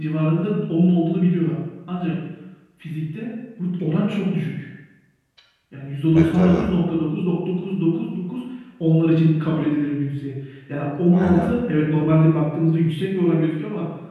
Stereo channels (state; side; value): identical; both; correlation 1.00